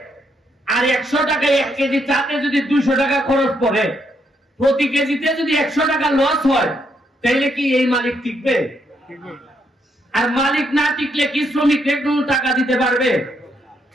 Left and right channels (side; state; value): both; normal; correlation 0.76